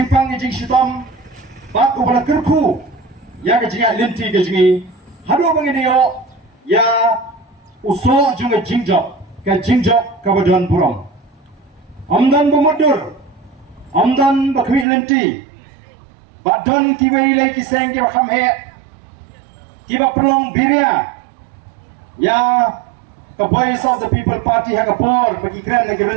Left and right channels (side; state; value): left; drops out; at 14.9 s